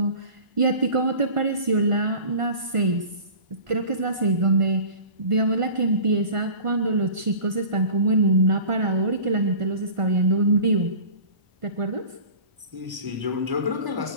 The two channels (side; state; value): left; late; 1.5 ms